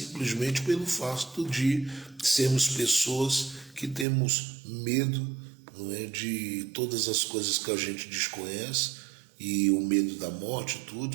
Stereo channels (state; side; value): drops out; left; at 4.0 s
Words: pelo fato de sermos pessoas que temos medo, não é, de todas as coisas que a gente desconhece, e o medo da morte,